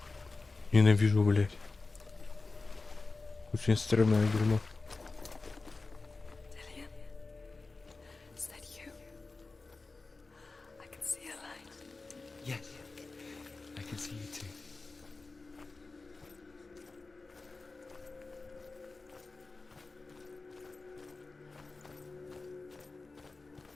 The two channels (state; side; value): quieter; right; 3.7 dB